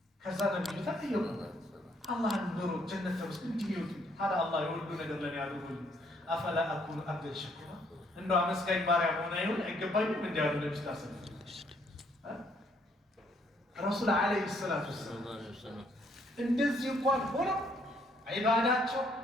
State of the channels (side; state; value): both; normal; correlation 0.68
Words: ከዛ ነብዩ ተጠየቁ አላህን ኑሮ ጀነት ተመስል እንዲሚወጡ ታዲያ አላህ የወዱ ነገር ለኔ ያደርጉልኝ አፈላ አኩኑ አብደን ሸኩራ እንደው አመስጋኝ ባሪያ መሆን አይገባኝም እንዲያሉ ነብዩ ታሰብ ረሱል ዓለይሂ ሰላቱ ወሰላም እንደዚህ እንኳን ሆነው ዒባዳቸው